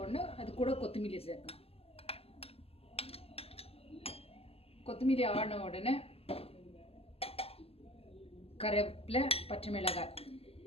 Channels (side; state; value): right; late; 0.28 ms